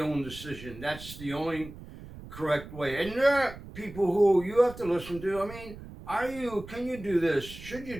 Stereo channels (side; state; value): right; noise; rumble, 15 dB below the sound